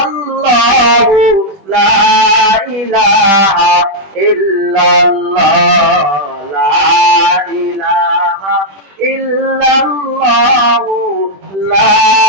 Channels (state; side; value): late; left; 20 ms